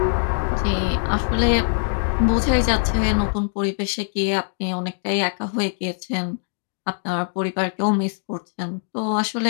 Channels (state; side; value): silent; right; digital silence